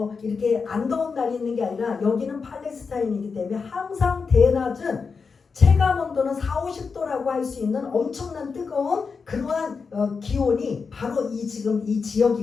이렇게 안 더운 날이 있는 게 아니라 여기는 팔레스타인이기 때문에 항상 대낮은 체감 온도는 40~50도라고 할 수 있는 엄청난 뜨거운 그러한 기온이 바로 지금 이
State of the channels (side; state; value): right; quieter; 5.2 dB